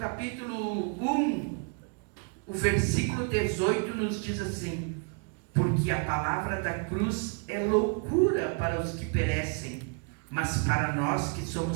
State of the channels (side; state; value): left; quieter; 39.0 dB